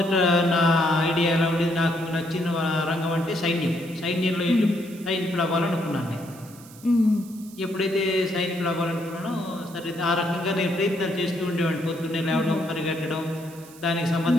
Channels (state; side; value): noise; right; hiss, 21 dB below the sound